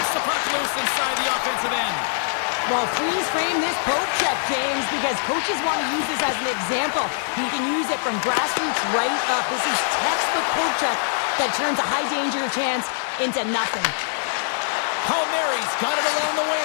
the puck loose inside the offensive end. Well, freeze frame this poke check, James, because coaches want to use this as an example. You can use it from grassroots right up. This is textbook poke check that turns a high danger chance into nothing. Palmieri's got it along the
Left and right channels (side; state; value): right; silent; digital silence